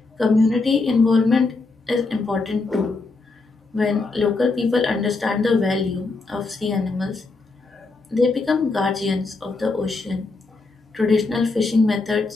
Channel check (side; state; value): right; quieter; 3.7 dB